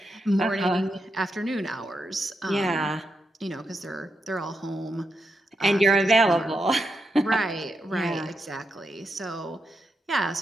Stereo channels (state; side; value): normal; both; correlation 0.85